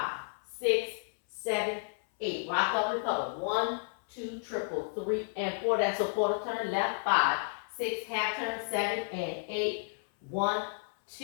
6, 7, 8. Rock up, recover. 1, 2, triple, 3, and 4. That's a quarter turn. Left, 5, 6, half turn, 7, and 8. 1,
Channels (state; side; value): silent; right; 56 dB below the other